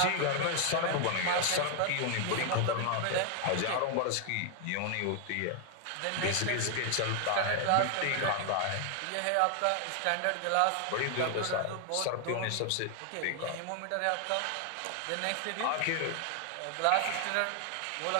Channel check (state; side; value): different; both; correlation 0.00